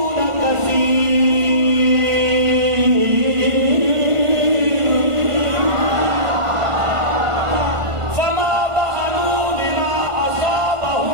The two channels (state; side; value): late; left; 1.5 ms